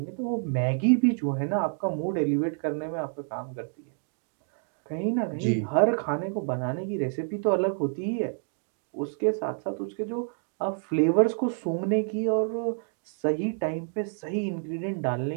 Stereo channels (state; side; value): silent; left; 57 dB below the other